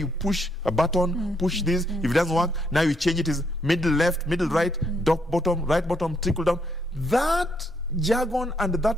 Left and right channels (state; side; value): normal; both; correlation 0.74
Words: push a button, push this, if it doesn't work, now you change it as middle left, middle right, top bottom, right bottom, trickle down. That jargon and